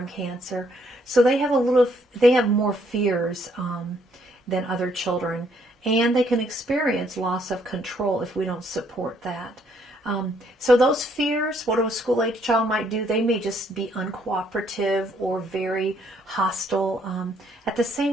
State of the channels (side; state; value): both; normal; correlation 0.69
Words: cancer. So they have more fears than other children, and they can experience loss of control if we don't support that. So those fears, what a school-age child might do, they may just be uncooperative or very hostile. At the